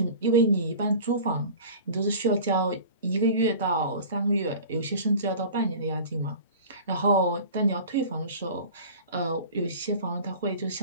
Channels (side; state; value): both; inverted; correlation -0.39